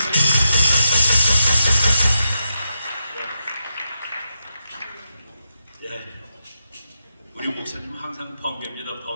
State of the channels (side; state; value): both; inverted; correlation -0.86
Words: 네. 우리 목사님 항상 번개입니다,